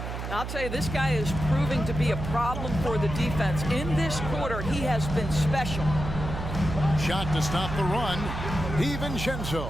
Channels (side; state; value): right; noise; hum, 6 dB below the sound